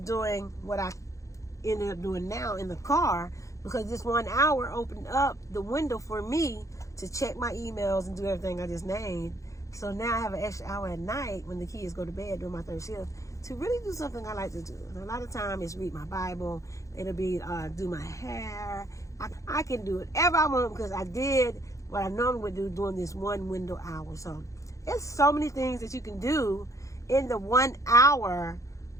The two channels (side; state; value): right; late; 0.15 ms